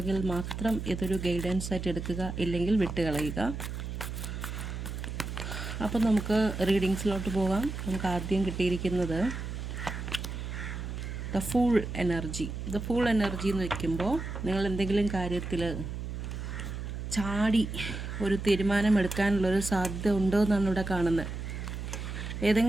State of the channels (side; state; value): right; noise; hum, 6 dB below the sound